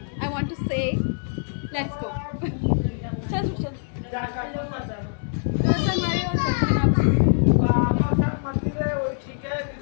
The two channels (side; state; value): right; silent; digital silence